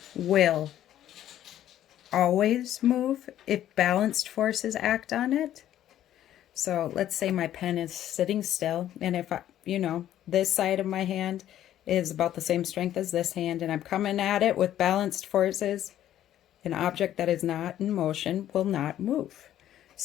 will always move if balanced forces act on it. So let's say my pen is sitting still, and if I, this side of my hand is about the same strength as this hand, and I'm coming at it with balanced forces, an object that is not in motion will not move.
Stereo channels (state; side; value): quieter; right; 11.9 dB